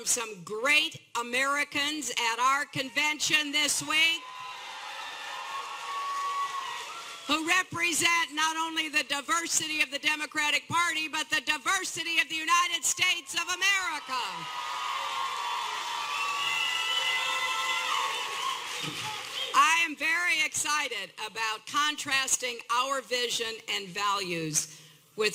some great Americans at our convention this week who represent not only the diversity of the Democratic Party, but the diversity of the United States of America. I am very excited about contrasting our vision and values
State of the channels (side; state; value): both; identical; correlation 1.00